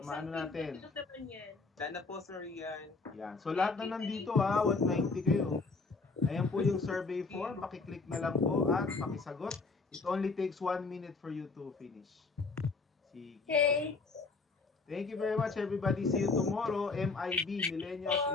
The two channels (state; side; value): quieter; right; 4.1 dB